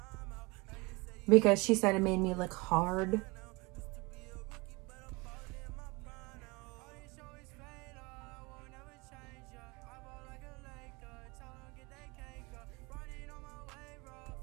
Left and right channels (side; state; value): left; quieter; 25.0 dB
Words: because she said it made me look hard.